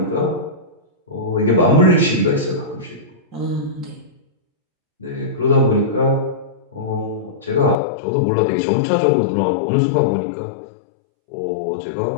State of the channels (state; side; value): drops out; right; at 7.8 s